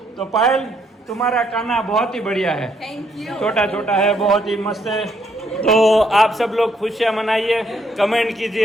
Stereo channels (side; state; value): both; normal; correlation 0.72